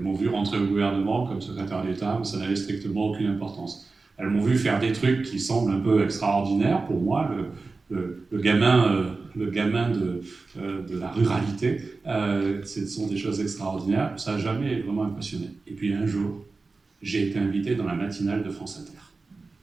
m'ont vu rentrer au gouvernement comme secrétaire d'État, mais ça n'avait strictement aucune importance. Elles m'ont vu faire des trucs qui semblent un peu extraordinaires pour moi, le gamin de la ruralité. Ce sont des choses extraordinaires, ça n'a jamais vraiment impressionné. Et puis un jour, j'ai été invité dans la matinale de France Inter.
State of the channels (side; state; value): left; quieter; 3.9 dB